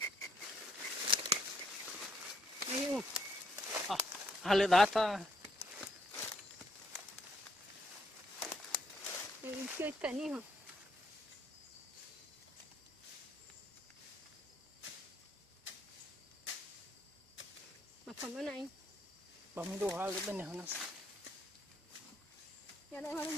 Huyu. Hale dah tahu. Ini kita ni ha. Macam mana ini? Pemilu hal itu ni hanas. Ya dah hari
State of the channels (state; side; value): normal; both; correlation 0.71